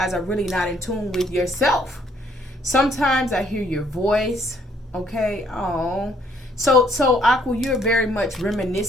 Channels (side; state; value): both; normal; correlation 0.66